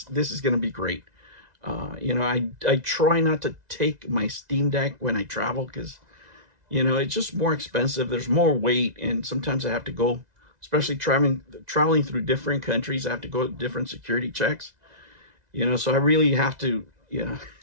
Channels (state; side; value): late; left; 2.0 ms